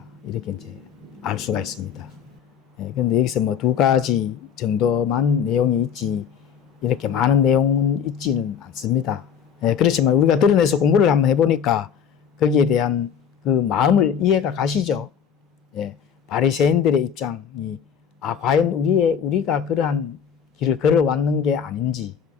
이렇게 이제 알 수가 있습니다. 그런데 여기서 뭐 두 가지 정도만 내용이 있지 이렇게 많은 내용은 있지는 않습니다. 그렇지만 우리가 드러내서 공부를 한번 해보니까 거기에 대한 그 마음을 이해가 가시죠. 바리새인들의 입장이 과연 우리가 그러한 길을 걸어왔는 게 아닌지,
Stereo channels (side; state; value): right; quieter; 7.8 dB